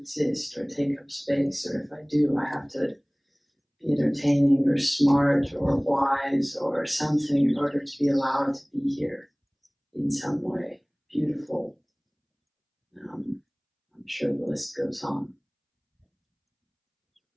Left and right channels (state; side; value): identical; both; correlation 1.00